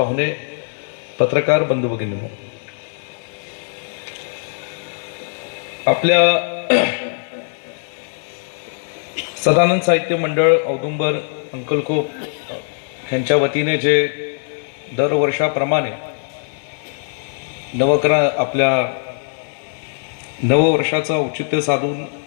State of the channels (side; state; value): right; silent; digital silence